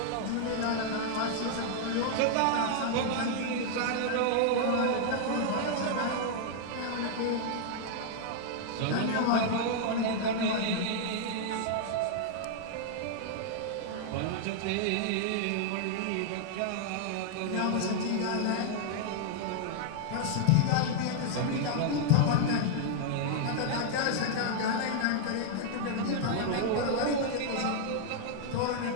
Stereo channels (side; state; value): both; different; correlation -0.01